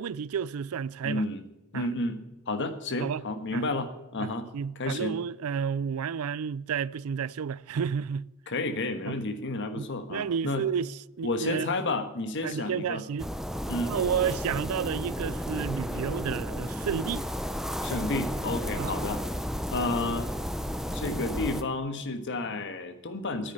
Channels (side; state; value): both; normal; correlation 0.24